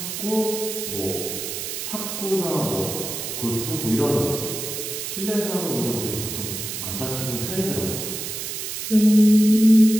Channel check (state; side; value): noise; right; hiss, 5 dB below the sound